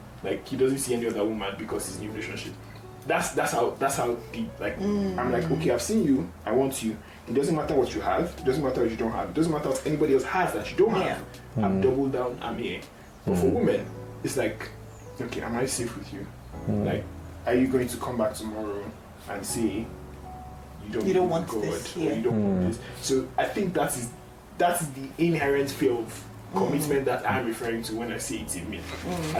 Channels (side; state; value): both; identical; correlation 1.00